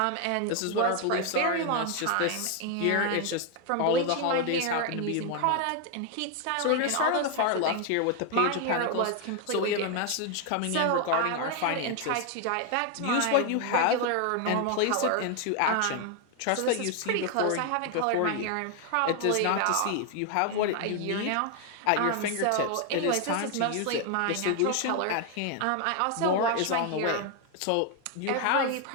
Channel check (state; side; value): different; both; correlation 0.01